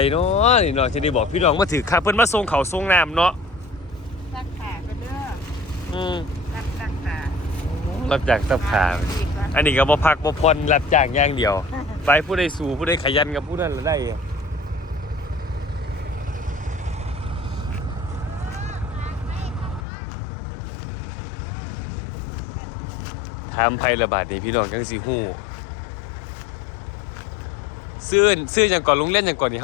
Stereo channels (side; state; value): right; drops out; at 19.9 s